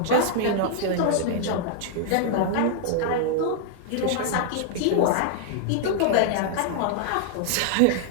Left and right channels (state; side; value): different; both; correlation -0.01